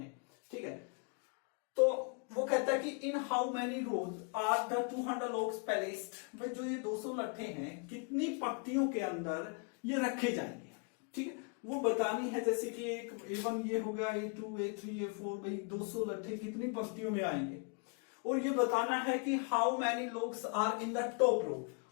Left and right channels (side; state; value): right; quieter; 35.8 dB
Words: ठीक है। तो वो कहता है कि in how many rows are the 200 logs placed, भाई जो ये 200 लट्ठे हैं कितनी पंक्तियों के अंदर ये रखे जाएंगे, ठीक है। वो बतानी है, जैसे कि एक A1 ये होगा, A2 A3 A4, भाई 200 लट्ठे कितनी पंक्तियों में आएंगे, और ये बताना है कि how many logs are in the top row,